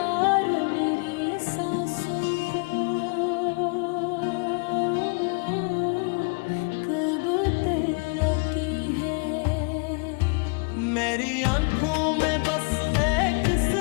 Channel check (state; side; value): quieter; right; 34.0 dB